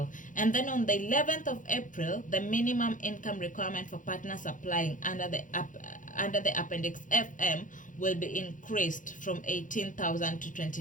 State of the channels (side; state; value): right; late; 0.38 ms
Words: And then on the 11th of April, the minimum income requirement for partners applying under the Appendix FM will be increased from 18,000 to